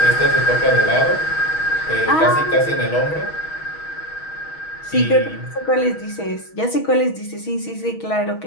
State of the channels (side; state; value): right; late; 6.3 ms